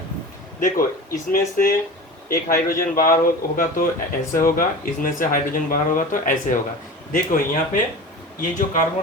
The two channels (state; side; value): normal; both; correlation 0.34